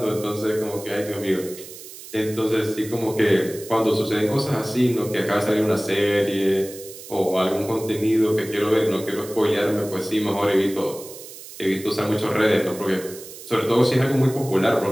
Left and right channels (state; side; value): noise; right; hiss, 15 dB below the sound